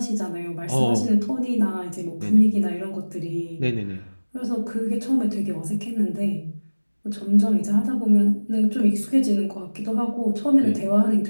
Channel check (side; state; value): both; inverted; correlation -1.00